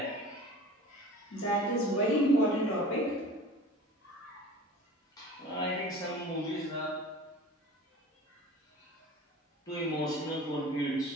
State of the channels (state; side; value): normal; both; correlation 0.39